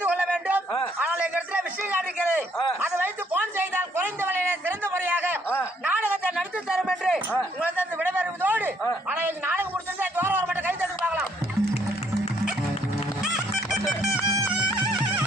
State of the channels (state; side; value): normal; both; correlation 0.68